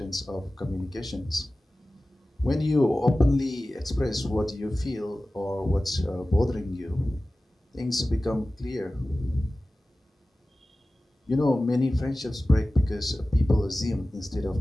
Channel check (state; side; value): normal; both; correlation 0.96